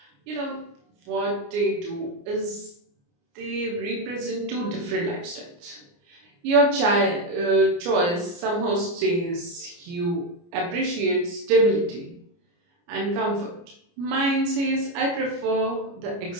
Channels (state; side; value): late; left; 29 ms